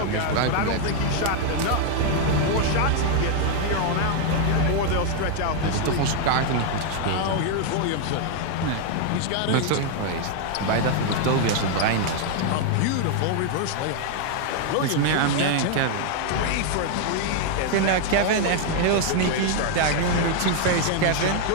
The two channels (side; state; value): both; different; correlation 0.00